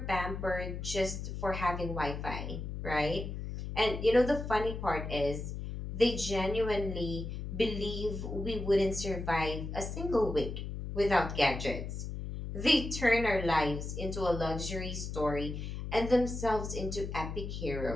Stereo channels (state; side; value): noise; left; hum, 6 dB below the sound